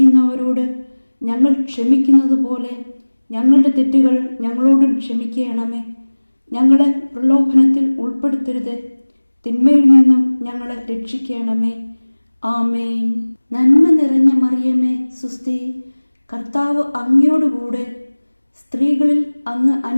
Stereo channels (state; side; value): inverted; both; correlation -1.00